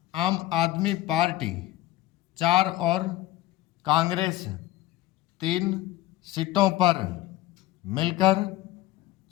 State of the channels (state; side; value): quieter; right; 16.1 dB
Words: आम आदमी पार्टी 4 और कांग्रेस 3 सीटों पर मिलकर